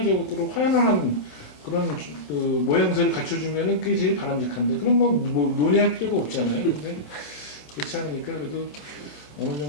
화연한 그런 그 모양새를 갖춰주면은 그게 제일 바람직한데 그럼 뭐 논의할 필요가 없잖아요. 근데 그렇지 않으니까 그래도 어느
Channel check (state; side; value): late; right; 27 ms